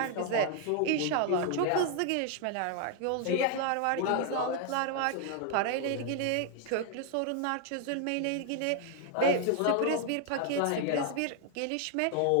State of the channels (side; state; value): both; different; correlation 0.00